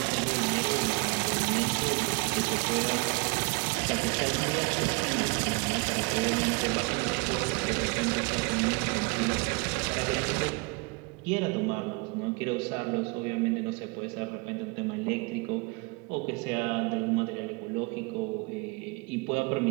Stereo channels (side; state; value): left; quieter; 28.3 dB